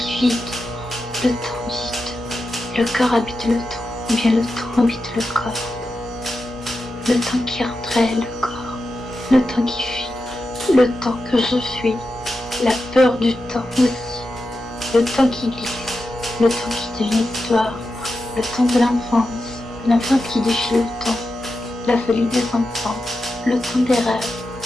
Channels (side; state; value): both; normal; correlation 0.90